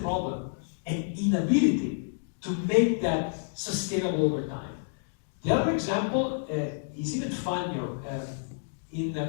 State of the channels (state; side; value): silent; right; digital silence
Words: problem, and inability to make that sustainable over time. The other example is even funnier.